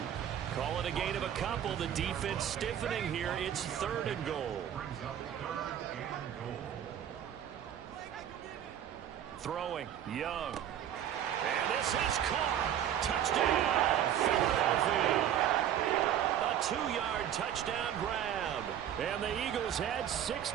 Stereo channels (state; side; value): quieter; left; 10.3 dB